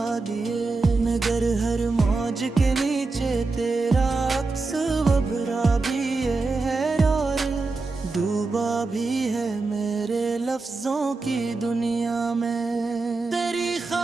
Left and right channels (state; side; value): quieter; left; 3.7 dB